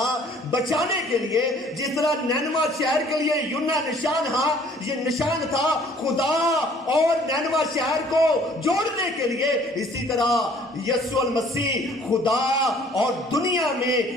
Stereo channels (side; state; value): both; normal; correlation 0.56